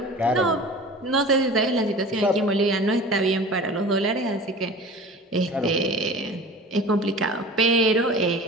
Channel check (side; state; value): both; normal; correlation 0.39